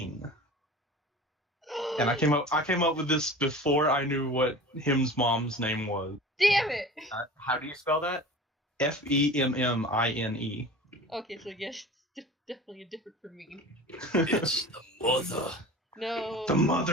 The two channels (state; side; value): normal; both; correlation 0.37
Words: And I came up with this before I knew what him's mom's name was. Damn it! How do you spell that? Femmine. Okay, so yes, it's definitely a different from me. It's the mother. No. The